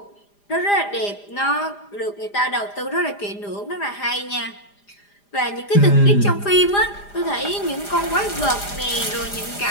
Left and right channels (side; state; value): right; late; 4.9 ms